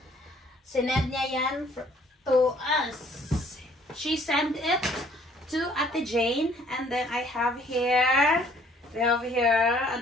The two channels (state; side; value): normal; both; correlation 0.60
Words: Sinend niya yan to us. She sent it to Ate Jane. And then I have here, we have here